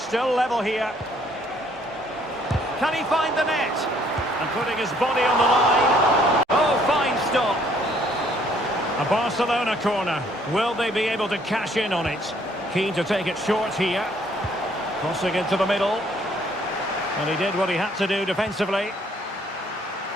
level here. Can he find the net? And putting his body on the line. Oh, fine stop. A Barcelona corner. Will they be able to cash in on it? Keen to take it short here. Crossing into the middle. And he did what he had to do defensively.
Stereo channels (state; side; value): normal; both; correlation 0.64